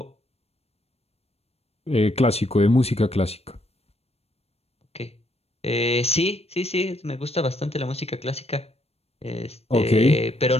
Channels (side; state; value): right; late; 0.30 ms